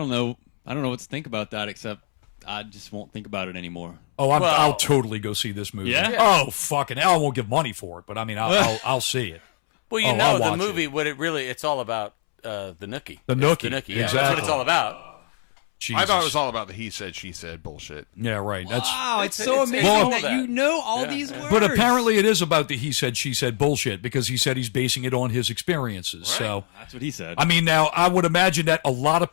know what to think about that, except I just won't think about it anymore. Oh, I'll totally go see this movie. Yeah? Oh, fucking hell, I won't give money for it, but I mean, I'll see it. Well, I'll the watch movie, it. it's all about the Nookie. The It's Nookie, The Nookie, yeah. exactly. That's what it's all about. Jesus. I thought it was all about the he said, she said bullshit. Yeah, right. That's. Wow, it's so amazing all that you know all these words. But apparently it is about the he said, she said bullshit because he said he's basing it on his experiences. So, That's what he said. I mean, now, I would imagine that a lot of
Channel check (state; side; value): silent; right; 63 dB below the other